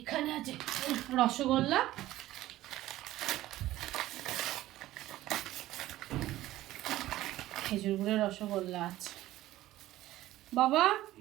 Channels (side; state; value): left; quieter; 15.4 dB